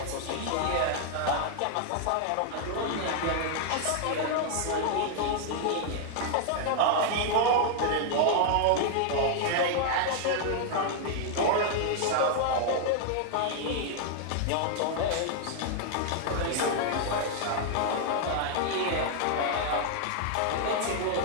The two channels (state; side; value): different; both; correlation 0.00